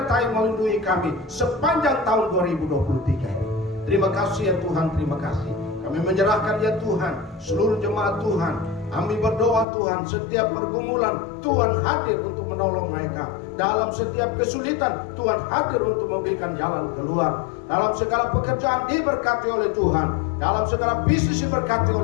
melindungi kami sepanjang tahun 2023 ini. Terima kasih ya Tuhan, terima kasih. Kami menyerahkan ya Tuhan seluruh jemaat Tuhan. Kami berdoa Tuhan, setiap pergumulan Tuhan hadir untuk menolong mereka. Dalam setiap kesulitan Tuhan hadir untuk memberikan jalan keluar. Dalam segala pekerjaan diberkati oleh Tuhan, dalam segala bisnis diberkati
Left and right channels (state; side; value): drops out; right; at 9.7 s